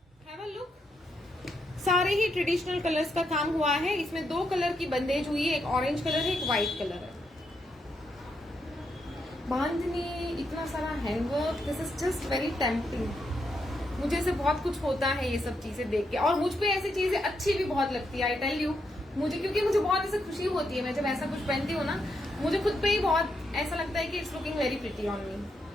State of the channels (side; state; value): both; normal; correlation 0.80